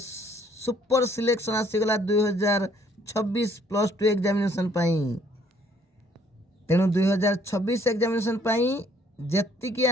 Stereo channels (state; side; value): normal; both; correlation 0.63